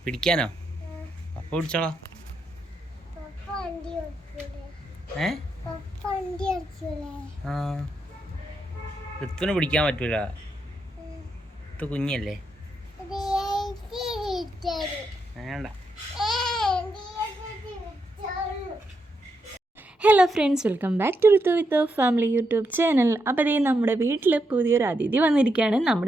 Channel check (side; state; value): both; normal; correlation 0.82